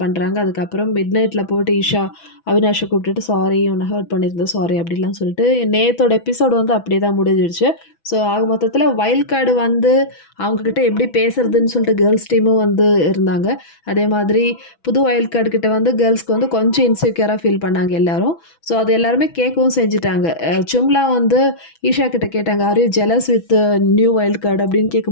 பண்ணுறாங்க. அதுக்கப்புறம் மிட் நைட்டில் போட்டு ஈஷா அவினாஷை கூப்பிட்டுட்டு சாரி உன்னை ஹர்ட் பண்ணியிருந்தோம் சாரி அப்படிலாம் சொல்லிட்டு நேத்தோட எபிசோடு வந்து அப்படியே தான் முடிஞ்சிடுச்சு. ஸோ ஆக மொத்தத்தில் வைல்ட் கார்டு வந்து அவங்கக்கிட்ட எப்படி பேசுறதுன்னு சொல்லிட்டு கேர்ள்ஸ் டீமும் வந்து இருந்தாங்க. அதே மாதிரி புது வைல்ட் கார்டு கிட்ட வந்து கேர்ள்ஸ்க்கு வந்து கொஞ்சம் இன்செக்யூராக ஃபீல் பண்ணாங்க எல்லாரும். ஸோ அது எல்லாருமே கேட்கவும் செஞ்சுட்டாங்க. சும்லா வந்து ஈஷா கிட்ட கேட்டாங்க, are you jealous with new wild card அப்படின்னு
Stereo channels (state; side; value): late; right; 6.1 ms